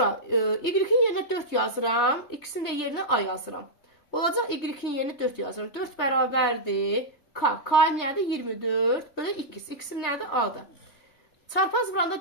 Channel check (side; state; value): right; late; 3.4 ms